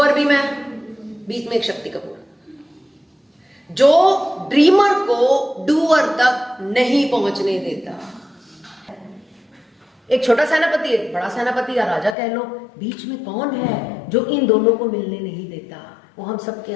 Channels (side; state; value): right; drops out; at 12.2 s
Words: भी मैं, बीच में एक शक्ति कपूर जो ड्रीमर को डूअर तक नहीं पहुंचने देता। एक छोटा सेनापति, एक बड़ा सेनापति या राजा कह लो, बीच में कौन है जो इन दोनों को मिलने नहीं देता? वो हम सबके